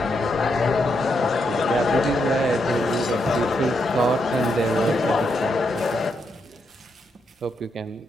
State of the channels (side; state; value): both; normal; correlation 0.80